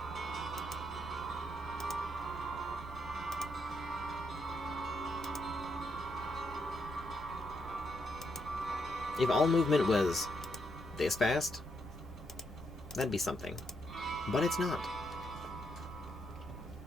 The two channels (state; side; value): normal; both; correlation 0.78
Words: If all movement was this fast, that'd be something. But it's not.